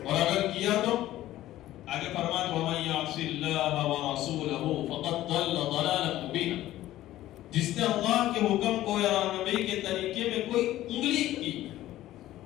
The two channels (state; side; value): quieter; right; 14.6 dB